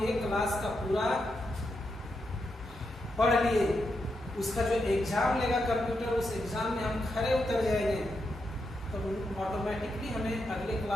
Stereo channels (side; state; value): both; normal; correlation 0.84